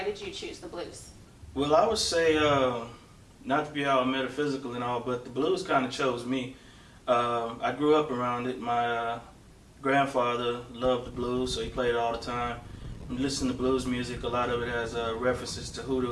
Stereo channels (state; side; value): identical; both; correlation 1.00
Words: did you choose the blues? Well, I would say, not to be all metaphysical and all, but the blues kind of chose me. I grew up around it. My grandfather loved the blues, so he played it all the time. And listen to blues music, a lot of it has references to